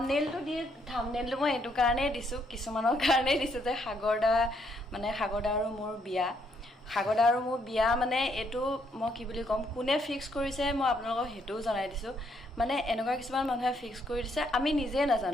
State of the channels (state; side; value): normal; both; correlation 0.72